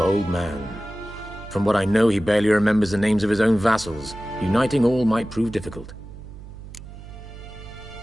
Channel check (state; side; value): noise; right; hum, 15 dB below the sound